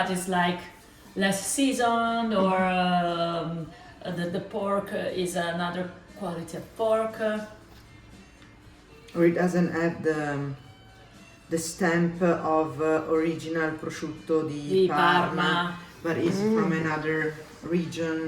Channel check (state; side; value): identical; both; correlation 1.00